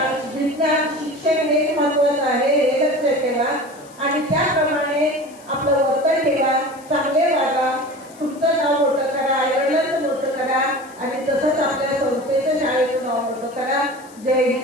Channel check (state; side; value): noise; left; hiss, 24 dB below the sound